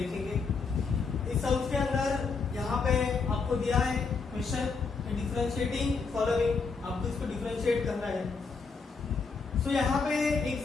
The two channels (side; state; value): right; quieter; 4.8 dB